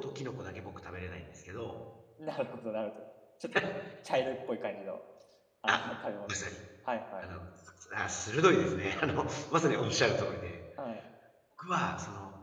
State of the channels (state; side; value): identical; both; correlation 1.00